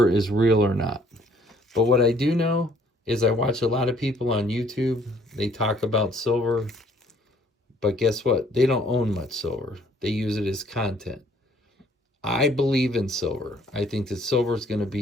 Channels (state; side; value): normal; both; correlation 0.61